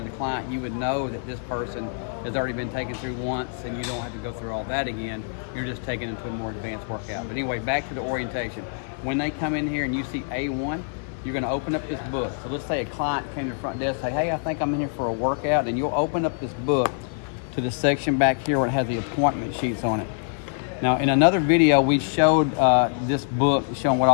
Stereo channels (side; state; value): right; silent; digital silence